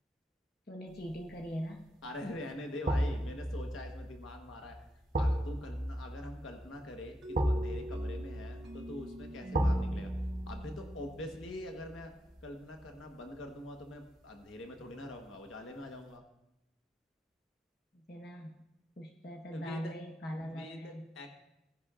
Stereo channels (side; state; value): both; normal; correlation 0.84